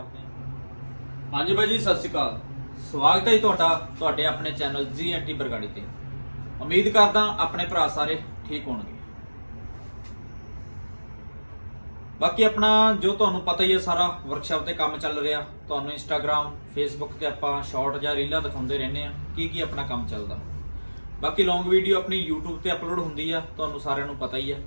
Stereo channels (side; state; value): both; inverted; correlation -1.00